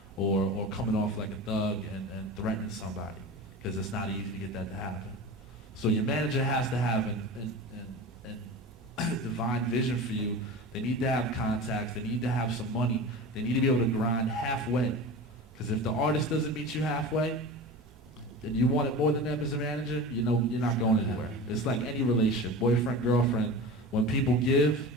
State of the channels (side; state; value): both; normal; correlation 0.31